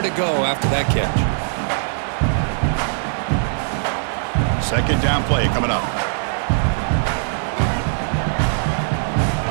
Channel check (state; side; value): silent; left; digital silence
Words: go after that catch. Second down play coming up.